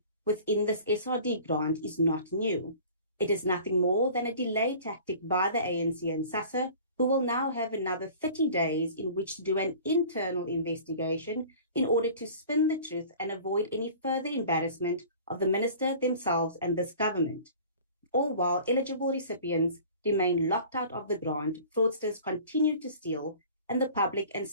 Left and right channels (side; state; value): both; inverted; correlation -0.44